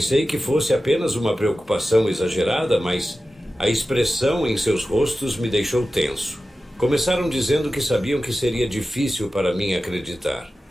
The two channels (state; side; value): normal; both; correlation 0.94